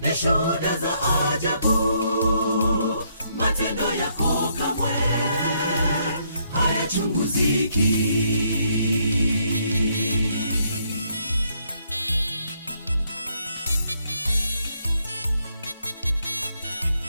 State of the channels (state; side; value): inverted; both; correlation -0.72